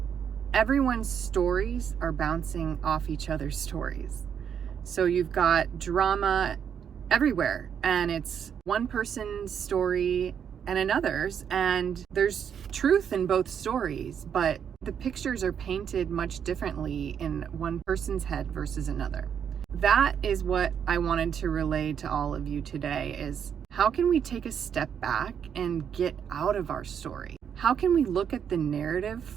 everyone's stories are bouncing off each other's stories. So you've got drama everywhere, and it's one person's story and another's, and there's truth in both stories, but the pictures are painted much differently in one person's head versus another. That is what I wanted to relay to all of you today, is how can we take a step back and get out of our story? How can we look at the narrative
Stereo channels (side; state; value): left; quieter; 8.0 dB